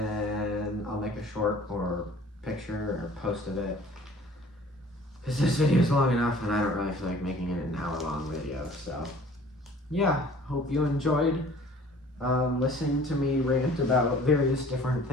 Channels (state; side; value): normal; both; correlation 0.51